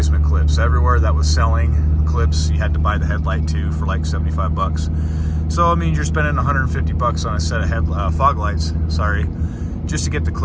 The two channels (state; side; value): identical; both; correlation 1.00